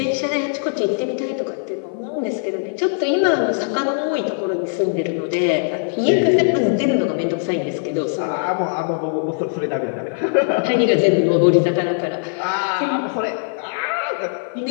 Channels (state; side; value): silent; right; 56 dB below the other